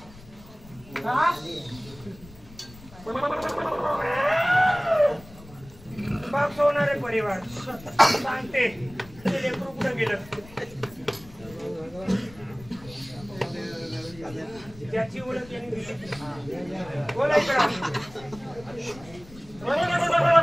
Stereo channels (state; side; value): noise; left; rumble, 20 dB below the sound